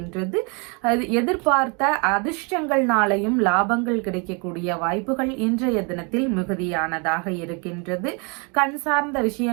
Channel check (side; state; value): left; quieter; 33.3 dB